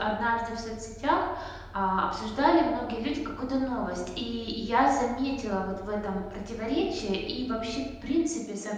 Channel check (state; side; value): identical; both; correlation 1.00